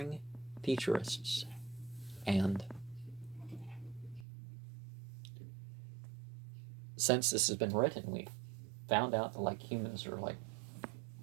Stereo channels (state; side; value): drops out; left; at 4.2 s